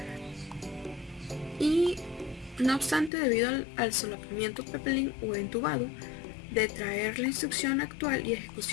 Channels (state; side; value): drops out; right; at 3.1 s